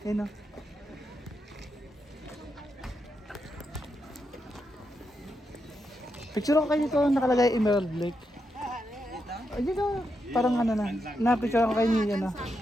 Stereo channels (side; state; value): both; normal; correlation 0.84